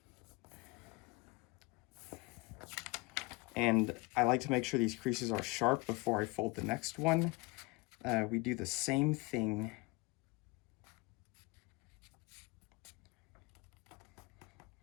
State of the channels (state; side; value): quieter; right; 24.3 dB